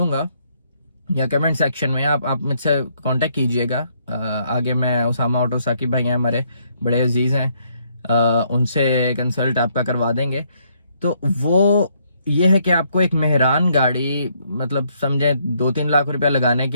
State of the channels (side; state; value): both; inverted; correlation -0.71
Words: या कमेंट सेक्शन में, आप मुझसे कांटेक्ट कीजिएगा। आगे मैं उसामा ऑटो साकिब भाई हैं हमारे, बड़े अजीज हैं, उनसे कंसल्ट आपका करवा देंगे। तो वो ये है कि आपको एक मेहरान गाड़ी, मतलब समझे 2-3 लाख रुपया लगाने